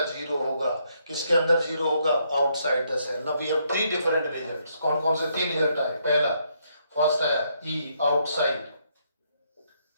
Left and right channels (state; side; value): inverted; both; correlation -0.74